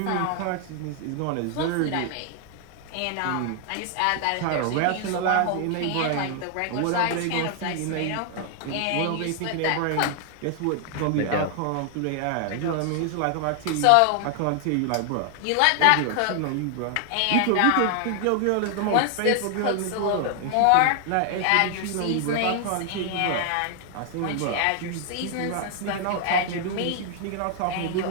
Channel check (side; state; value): both; different; correlation 0.00